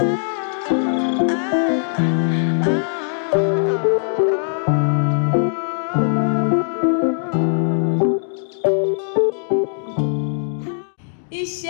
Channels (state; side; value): silent; right; digital silence